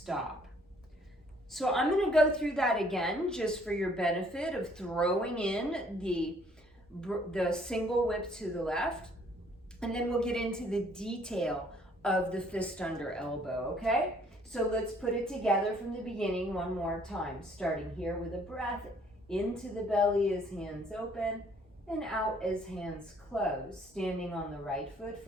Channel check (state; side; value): normal; both; correlation 0.62